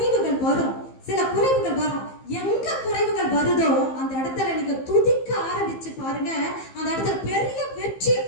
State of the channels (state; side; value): late; right; 15 ms